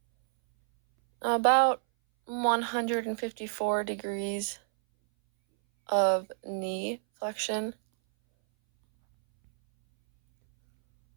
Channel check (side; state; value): left; silent; 59 dB below the other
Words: About 154 degrees of knee flexion.